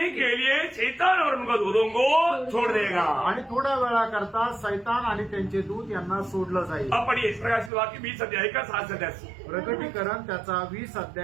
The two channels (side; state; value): left; drops out; at 7.7 s